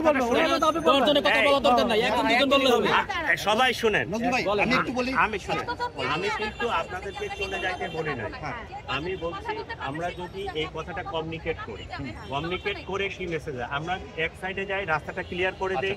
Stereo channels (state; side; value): identical; both; correlation 1.00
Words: সবাই শুনেন, আমি শুনেন, আমি কিন্তু আপনাদেরকে চলে যাইতে বলি নাই। আমি বলছি আমরা যদি এই কথাটা কমিউনিকেট করে কি মেসেজ আমরা এক সাইডে যাই, রাস্তাটা ক্লিয়ার করে দেই।